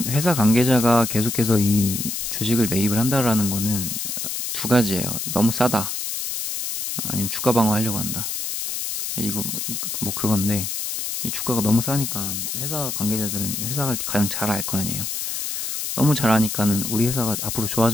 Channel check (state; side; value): noise; left; hiss, 3 dB below the sound